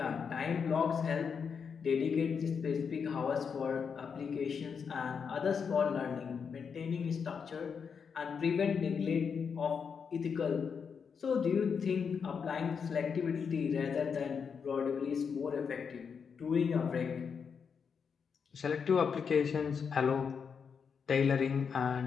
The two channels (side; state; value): right; quieter; 6.3 dB